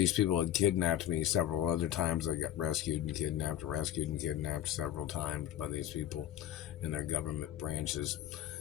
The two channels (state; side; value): quieter; right; 11.7 dB